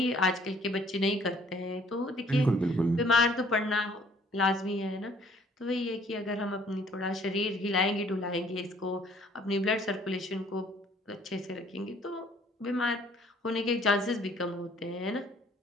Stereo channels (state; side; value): normal; both; correlation 0.59